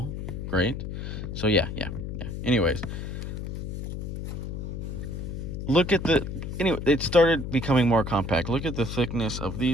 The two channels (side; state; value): left; noise; hum, 6 dB below the sound